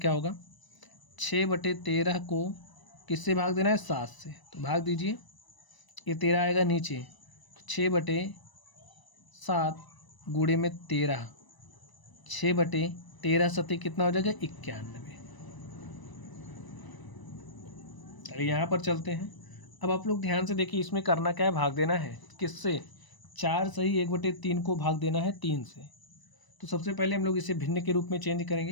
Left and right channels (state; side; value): late; right; 1.0 ms